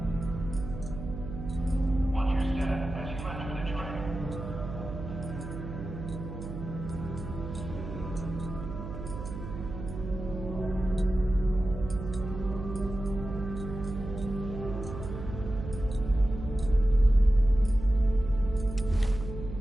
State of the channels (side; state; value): right; noise; hum, 8 dB below the sound